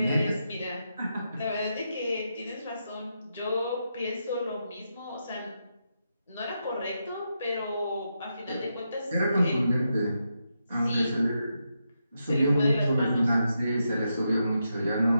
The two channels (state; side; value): inverted; both; correlation -0.84